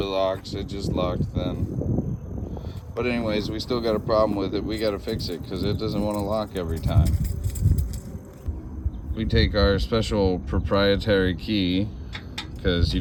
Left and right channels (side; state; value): both; identical; correlation 1.00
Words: locks. It just locked then. But anyways, we still got a problem with it. We got to fix it because it doesn't want to lock every time. We take our special proprietary key because you